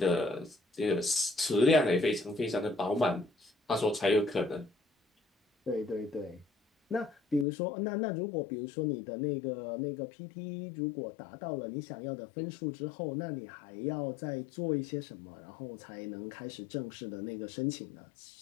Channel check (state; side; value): drops out; right; at 7.5 s